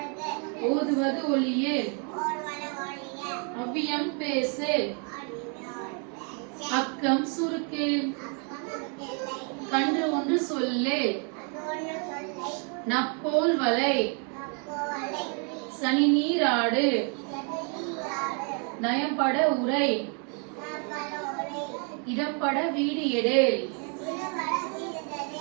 ஓதுவது ஒளியே, அவ்வியம் பேசு, அக்கம் சுருக்கே, கன்று ஒன்று சொல்லே, நப்போல் வலை, சனி நீராடு, நயம்பட உரை, இடப்பட வீடு எடேல்,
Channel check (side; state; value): left; quieter; 39.2 dB